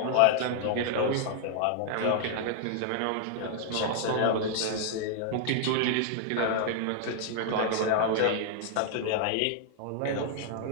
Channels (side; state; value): both; different; correlation 0.00